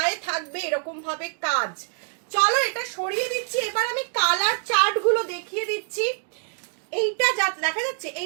থাকবে এরকম ভাবে কাজ। চলো এটা সরিয়ে দিচ্ছি, এবার আমি কালার চার্ট গুলো দেখিয়ে দিচ্ছি। এইটা দেখা যাচ্ছে,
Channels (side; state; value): left; silent; 61 dB below the other